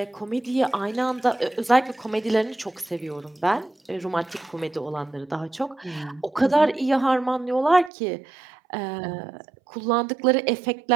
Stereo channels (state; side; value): drops out; left; at 7.9 s